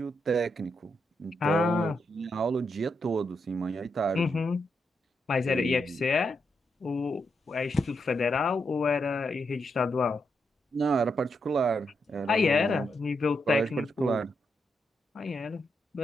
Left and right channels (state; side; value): normal; both; correlation 0.82